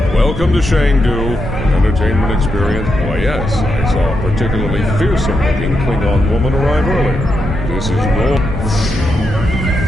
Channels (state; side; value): normal; both; correlation 0.83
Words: Welcome to Shangdu. Entertainment experience? Why, yes. I saw a particularly fearsome-looking Klingon woman arrive earlier. This is no...